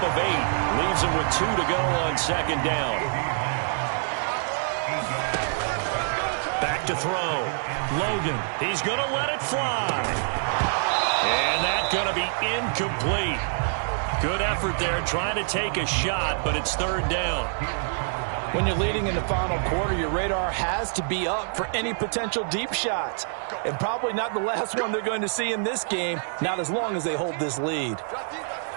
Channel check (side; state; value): left; silent; digital silence